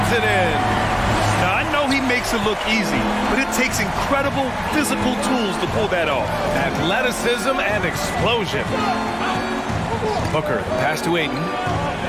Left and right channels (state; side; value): identical; both; correlation 1.00